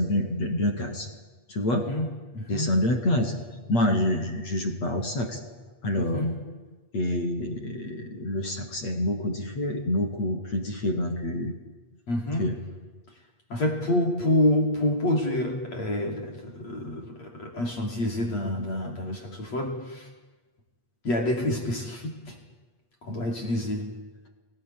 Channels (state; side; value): late; right; 8.4 ms